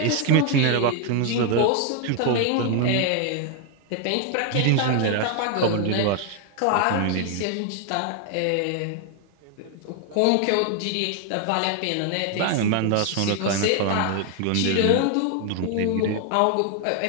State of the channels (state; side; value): different; both; correlation 0.00